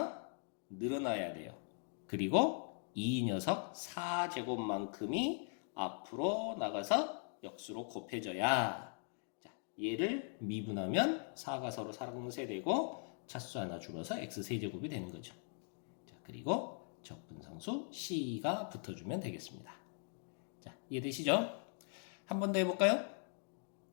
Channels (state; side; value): silent; right; 51 dB below the other